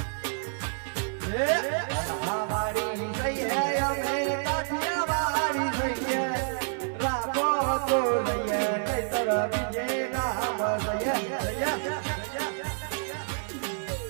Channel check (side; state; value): left; silent; 59 dB below the other